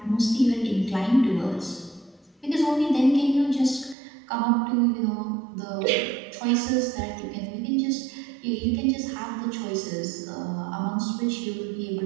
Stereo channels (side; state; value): left; drops out; at 4.0 s